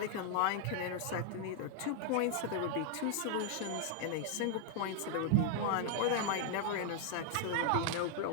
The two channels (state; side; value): different; both; correlation 0.00